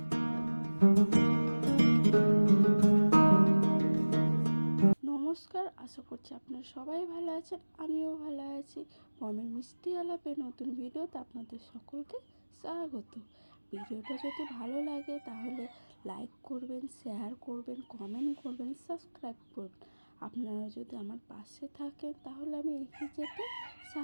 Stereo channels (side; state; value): both; inverted; correlation -1.00